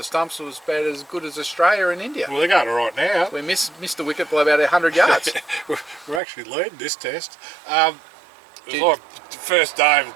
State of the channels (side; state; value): left; drops out; at 6.2 s